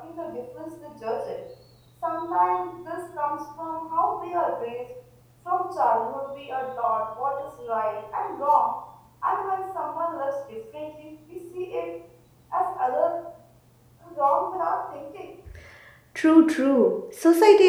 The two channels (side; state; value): both; identical; correlation 1.00